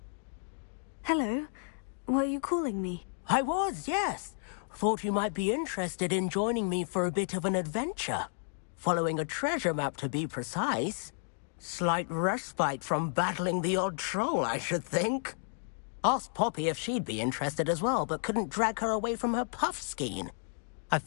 Hello. Were you calling me? I was, yes. Thought you might be interested in joining me for a bit of an adventure. Following a treasure map, to be precise. Slight respite from battling the odd troll, I should think. Asked Poppy if she'd be interested as well, but couldn't drag her away from her puff skein. I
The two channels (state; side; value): silent; right; digital silence